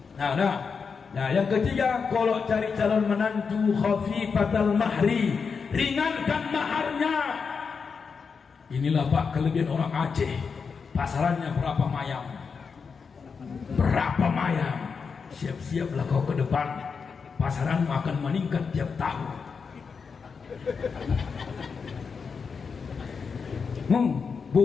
Nah, yang ketiga, kalau cari calon menantu khafifatal mahri, ringankan maharnya. Inilah pak kelebihan orang Aceh. Pasarannya berapa mayang? Berapa mayang? Siap-siaplah kau ke depan. Pasaran akan meningkat tiap tahun.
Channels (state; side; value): quieter; right; 5.6 dB